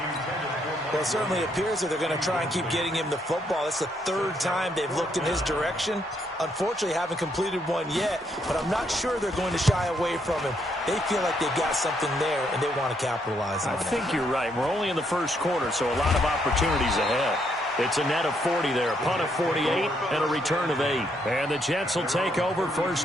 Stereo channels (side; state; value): both; normal; correlation 0.74